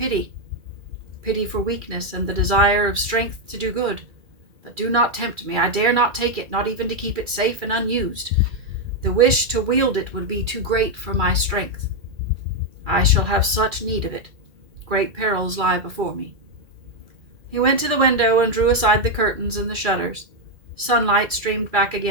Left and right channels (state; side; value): late; left; 2.4 ms